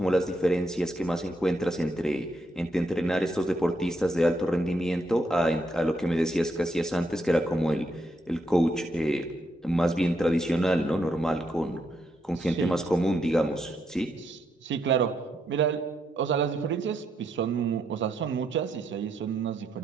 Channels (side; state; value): both; normal; correlation 0.78